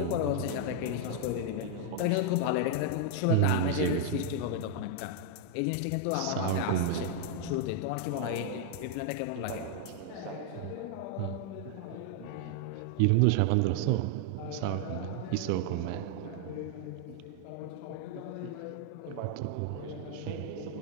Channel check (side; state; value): both; different; correlation 0.00